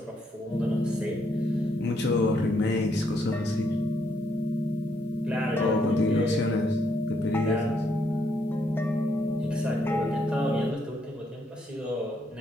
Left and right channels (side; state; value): both; normal; correlation 0.74